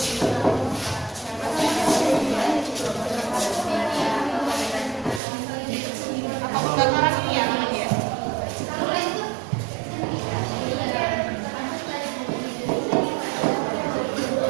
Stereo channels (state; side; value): drops out; left; at 5.2 s